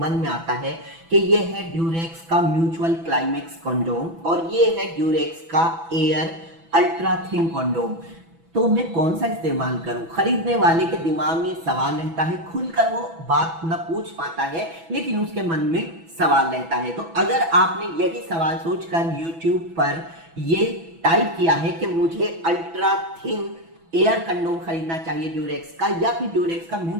में आता है कि ये है ड्यूरेक्स का म्यूचुअल क्लाइमेक्स कंडोम और ये है ड्यूरेक्स का एयर अल्ट्रा थिन कंडोम, तो मैं कौन सा इस्तेमाल करूं। खरीदने वाले के दिमाग में सवाल रहता है, खुलकर वो बात न पूछ पाता है लेकिन उसके मन में सवाल रहता है। तो अगर आपने यही सवाल सोचकर YouTube पर ये टाइप किया है कि मुझे अल्ट्रा थिन एयर कंडोम खरीदना चाहिए ड्यूरेक्स का, या फिर ड्यूरेक्स का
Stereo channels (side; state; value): left; late; 6.1 ms